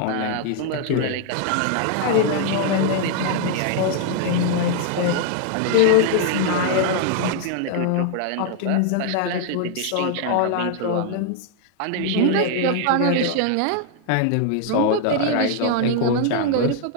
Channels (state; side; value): different; both; correlation 0.00